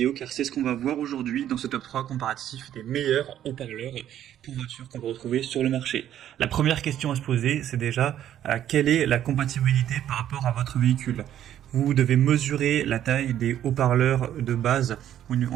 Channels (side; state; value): left; quieter; 11.2 dB